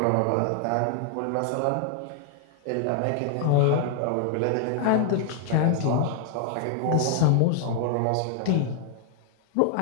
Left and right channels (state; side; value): different; both; correlation -0.01